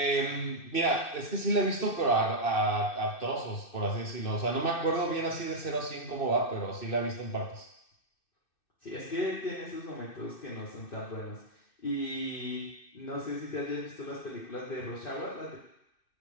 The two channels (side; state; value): right; late; 2.6 ms